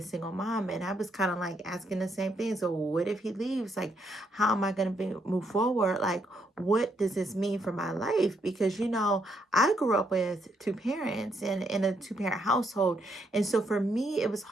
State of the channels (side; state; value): both; normal; correlation 0.75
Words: single mom. And I was kind of like asking the same thing. So what if he leaves? Like, how am I going to be move forward? Like, what does this mean for my life? Because I grew up with two parents and in a two-parent household. And so for me, it was